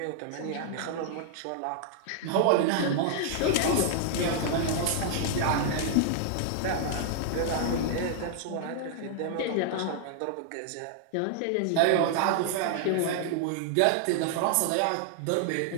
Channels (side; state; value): both; different; correlation -0.01